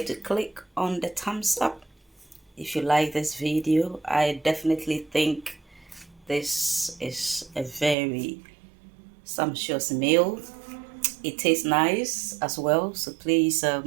to click on the thumbs up if you like this video. I definitely think this is a very sumptuous meal. It tastes nice as well, so please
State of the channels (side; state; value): left; drops out; at 8.0 s